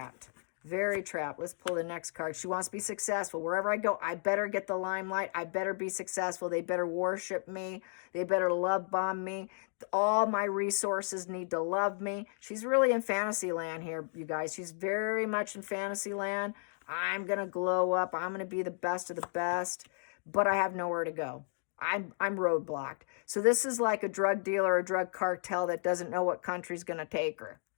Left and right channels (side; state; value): right; silent; digital silence